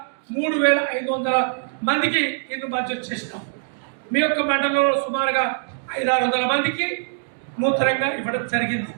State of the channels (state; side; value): silent; left; digital silence